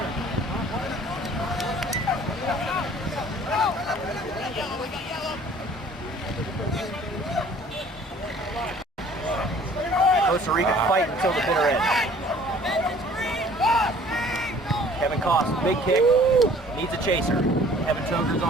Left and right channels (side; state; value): both; normal; correlation 0.53